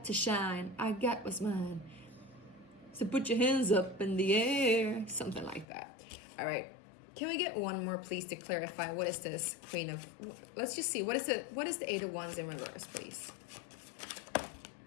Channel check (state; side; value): drops out; right; at 5.7 s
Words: to shine. I got what's mine. So put your hands up in the air. Something like that. All right. Can we get one more, please, to clarify what is this Queen of... Let's just see. What is the Eight of Wands in reverse, please?